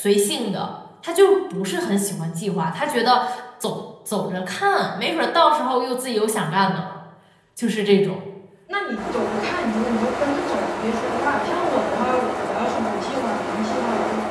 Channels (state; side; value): identical; both; correlation 1.00